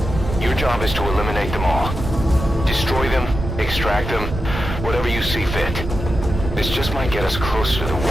Your job is to eliminate them all. Destroy them, extract them, whatever you see fit. This just might get us closer to the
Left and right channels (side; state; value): right; noise; rumble, 6 dB below the sound